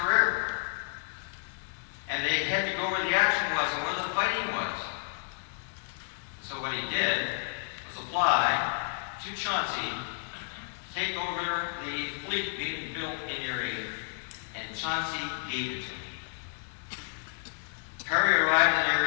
And they had to go where the action was and where the fighting was. So what he did was apply to Chauncey to take over the fleet being built in Erie, and Chauncey gave it to him. Perry arrived in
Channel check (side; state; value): right; silent; 57 dB below the other